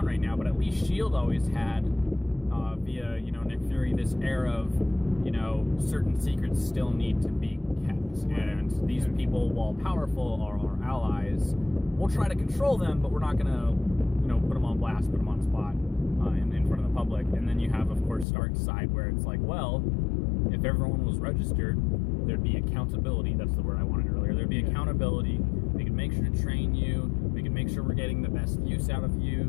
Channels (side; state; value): right; drops out; at 18.2 s